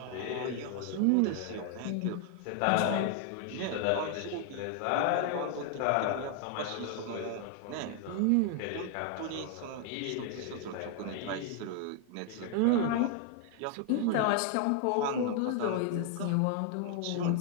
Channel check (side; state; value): both; different; correlation 0.00